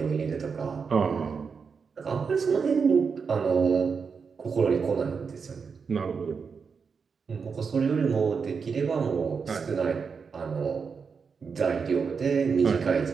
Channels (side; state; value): left; quieter; 5.6 dB